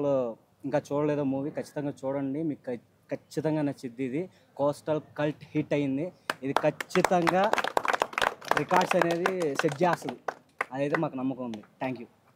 ఇంకా చూడలేదో మూవీ ఖచ్చితంగా చూడండి, మీకు ఖచ్చితంగా నచ్చిద్ది. ఇది కోస్టల్ కల్ట్ హిట్ అయింది, ఇది ఖచ్చితంగా రికార్డ్స్ అనేది సెట్ చేస్తుంది, అదైతే మాకు నమ్మకం ఉంది. Thank you.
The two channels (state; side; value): identical; both; correlation 1.00